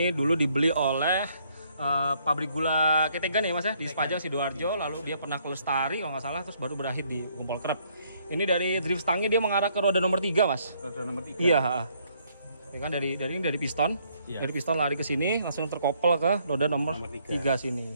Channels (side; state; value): both; inverted; correlation -0.68